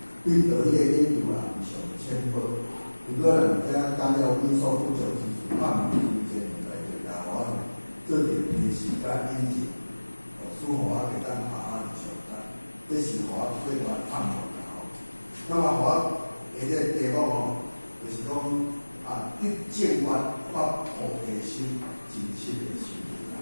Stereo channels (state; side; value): inverted; both; correlation -1.00